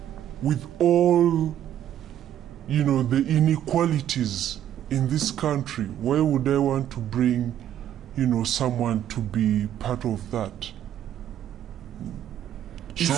with all, the inequalities in this country, why would I want to bring, someone to be part of that?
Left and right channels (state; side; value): quieter; left; 11.0 dB